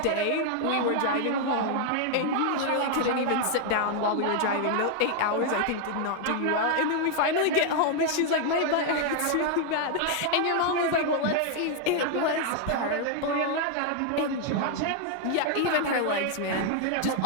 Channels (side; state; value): both; different; correlation 0.00